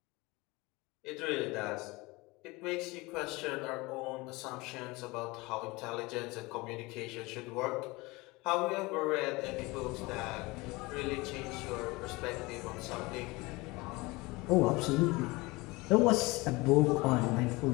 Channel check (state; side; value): quieter; right; 23.3 dB